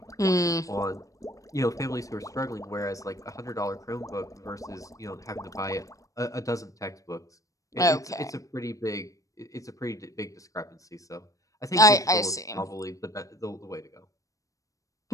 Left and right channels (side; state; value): right; late; 0.16 ms